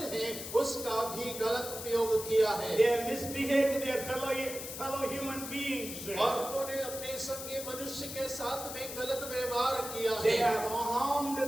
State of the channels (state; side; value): noise; left; hiss, 8 dB below the sound